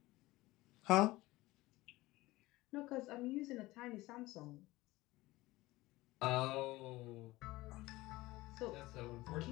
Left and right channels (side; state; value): right; quieter; 19.2 dB